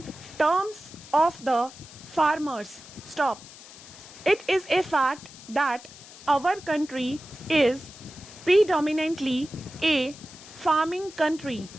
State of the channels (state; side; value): noise; left; hiss, 18 dB below the sound